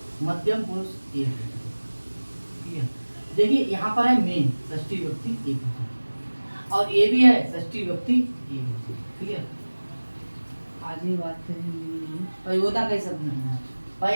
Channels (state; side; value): inverted; both; correlation -1.00